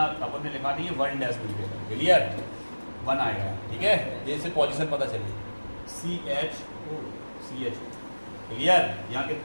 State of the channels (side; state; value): both; inverted; correlation -1.00